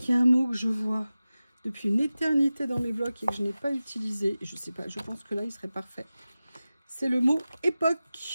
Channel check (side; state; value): both; inverted; correlation -0.96